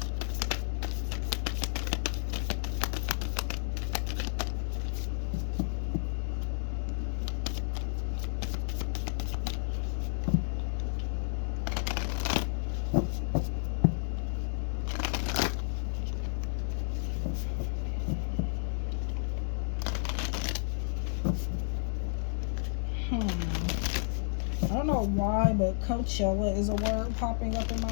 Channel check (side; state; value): right; silent; 57 dB below the other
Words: I don't know why, but Coachella is a word popping up in my